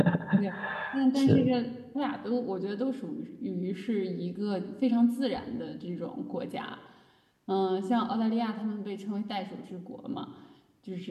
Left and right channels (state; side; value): identical; both; correlation 1.00